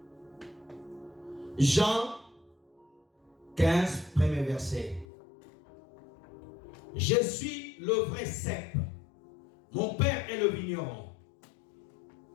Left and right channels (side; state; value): right; drops out; at 5.1 s